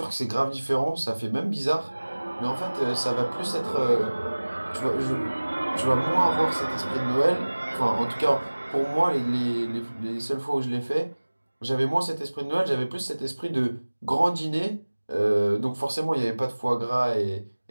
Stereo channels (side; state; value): both; inverted; correlation -1.00